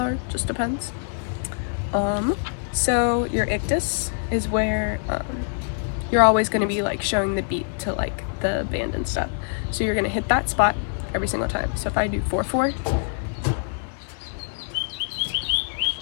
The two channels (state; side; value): silent; right; 62 dB below the other